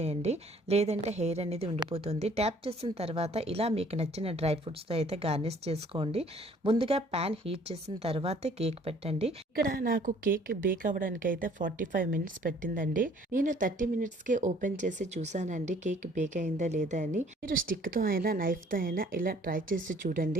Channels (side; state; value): both; normal; correlation 0.57